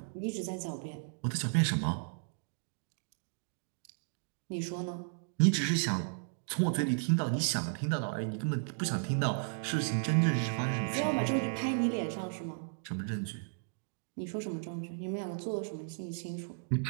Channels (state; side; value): silent; left; digital silence